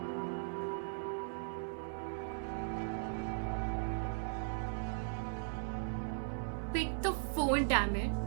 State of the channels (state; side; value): silent; left; 52 dB below the other